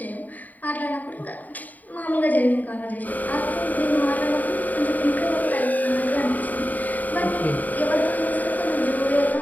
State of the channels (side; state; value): right; late; 0.081 ms